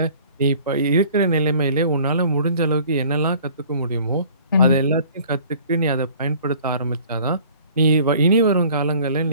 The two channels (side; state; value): both; inverted; correlation -0.51